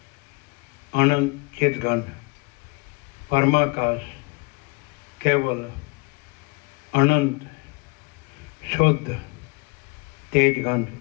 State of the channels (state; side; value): quieter; right; 28.6 dB